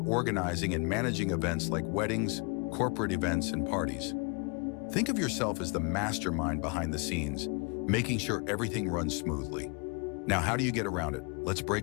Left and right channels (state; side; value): quieter; right; 33.4 dB